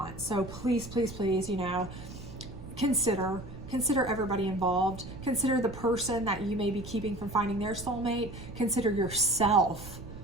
So please, please, please, you know, consider everybody involved. Consider the person that you may be keeping from finding their soulmate. Consider yourself,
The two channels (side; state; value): right; noise; rumble, 13 dB below the sound